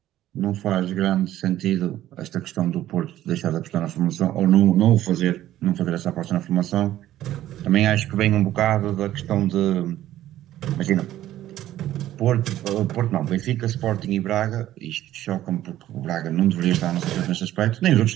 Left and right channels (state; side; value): quieter; left; 13.4 dB